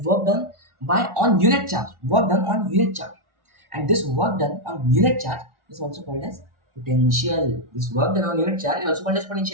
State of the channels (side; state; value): left; late; 1.4 ms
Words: work done by on unit charge. Work done on unit charge, and this work done on unit charge is also called as potential. This work done on unit charge is also called as